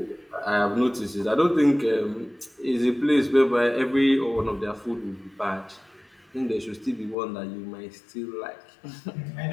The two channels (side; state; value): right; drops out; at 7.2 s